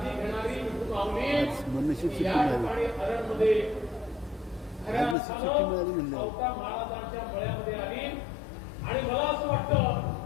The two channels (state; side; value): drops out; right; at 5.2 s